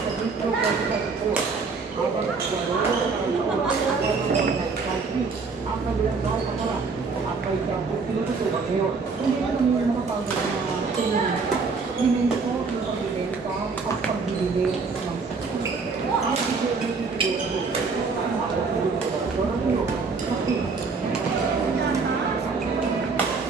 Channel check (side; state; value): left; quieter; 4.6 dB